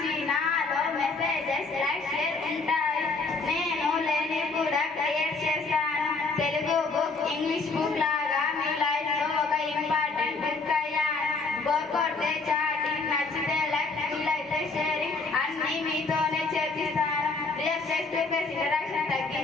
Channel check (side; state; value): right; quieter; 3.9 dB